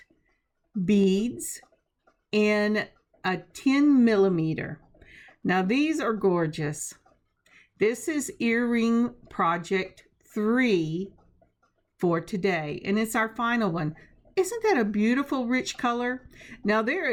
beads in a 10 millimeter. Now these are gorgeous. This is earring project 3 for today, and it's our final one. Isn't that a beautiful rich color? Now there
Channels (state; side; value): identical; both; correlation 1.00